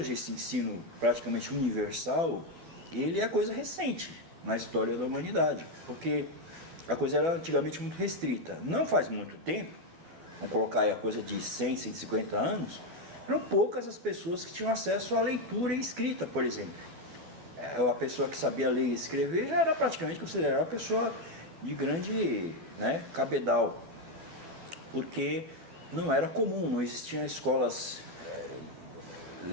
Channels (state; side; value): late; left; 12 ms